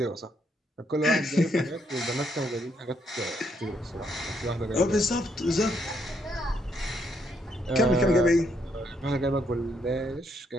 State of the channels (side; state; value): both; normal; correlation 0.74